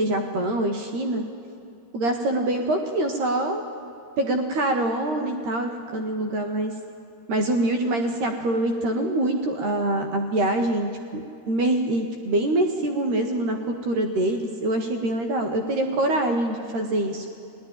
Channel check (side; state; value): left; late; 13 ms